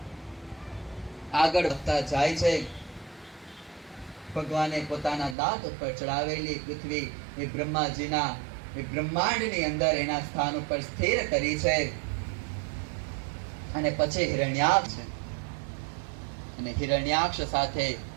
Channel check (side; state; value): left; drops out; at 5.4 s